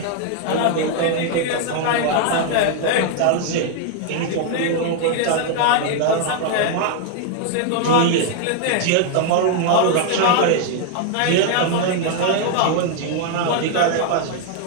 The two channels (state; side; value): different; both; correlation 0.00